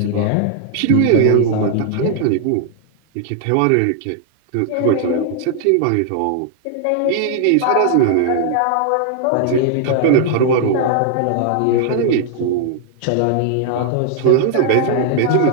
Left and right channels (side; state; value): both; different; correlation -0.01